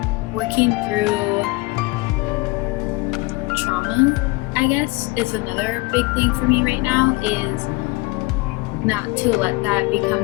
Working through trauma, I guess, is another big thing for me right now, is not to let that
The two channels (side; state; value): right; quieter; 23.3 dB